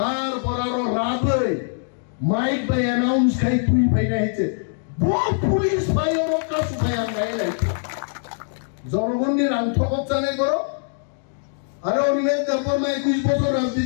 আরো রাত হয়ে মাইক বাই অ্যানাউন্স খাই তুই ভাই না হয়েছে পুলিশ ভাই ওর কাছে ভাই আমরা এলাইছে জনগণের আন্তঃকত জানে করো আরে অনিমেষ তারপর 21 বছর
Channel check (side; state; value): right; silent; digital silence